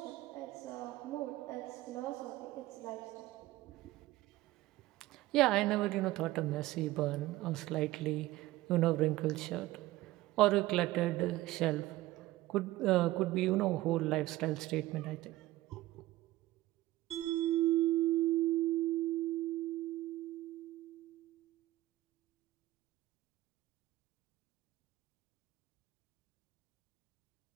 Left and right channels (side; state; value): left; quieter; 17.1 dB